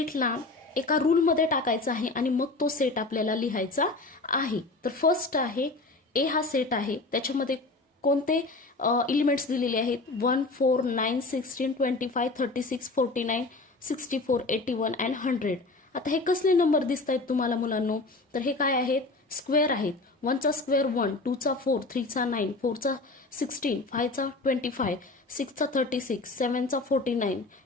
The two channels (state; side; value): quieter; right; 3.3 dB